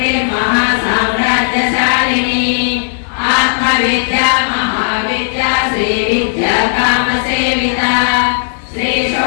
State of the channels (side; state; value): right; silent; digital silence